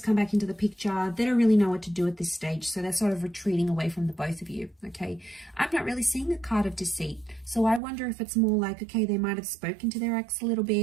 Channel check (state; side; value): drops out; left; at 7.8 s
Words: come back into the picture. They don't really know what to do at this stage, so they're sort of retreating away from the both of you. Okay, I'm not really seeing a card of deceit, so I wonder if it's more like, okay, they might have spoken to their ex a little